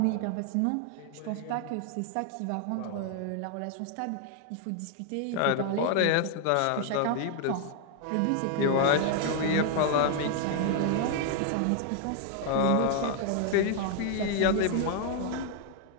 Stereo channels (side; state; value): both; different; correlation 0.00